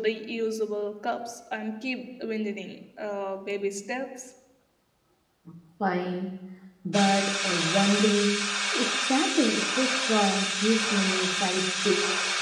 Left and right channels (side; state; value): both; identical; correlation 1.00